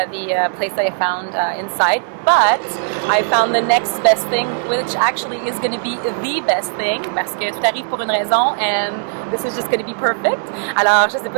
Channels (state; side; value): silent; left; digital silence